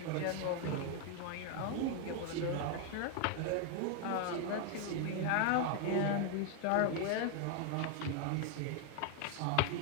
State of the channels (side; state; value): both; different; correlation 0.01